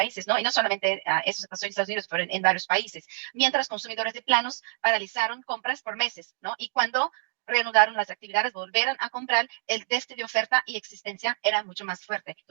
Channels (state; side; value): silent; left; digital silence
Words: ¿no? Y no solamente eso se pasó en Estados Unidos, pero en varios países, mientras consumidores de planos paralizaron compras por meses, ¿no? Y cuando reanudaron las actividades, volvieron a comprar, el déficit de oferta y existencia era mucho más fuerte.